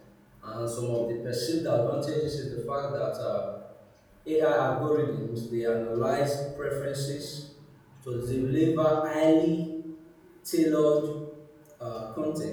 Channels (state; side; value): identical; both; correlation 1.00